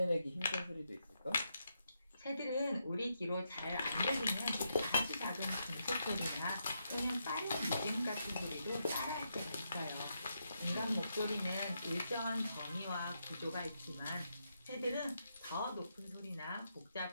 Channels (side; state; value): both; inverted; correlation -0.82